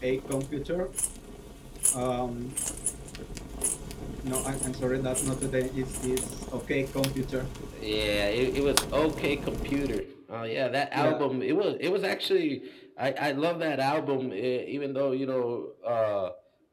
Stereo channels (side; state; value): both; identical; correlation 1.00